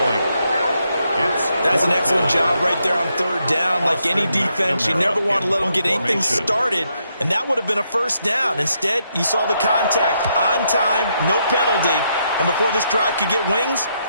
That's an excellent job right there on third down. Like any defense, you never want to let them get anything started, and that would have been a first down. Instead, you saw the contact on time, no penalty, and before this drive could get wings,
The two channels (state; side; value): inverted; both; correlation -0.78